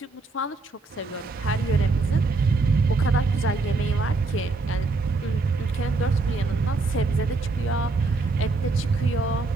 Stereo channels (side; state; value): left; quieter; 3.6 dB